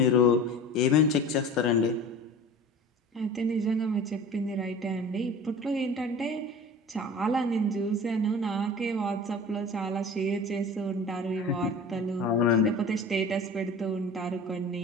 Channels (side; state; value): both; normal; correlation 0.38